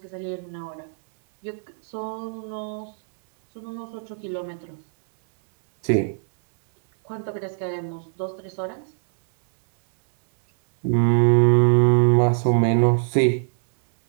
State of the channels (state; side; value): silent; left; 64 dB below the other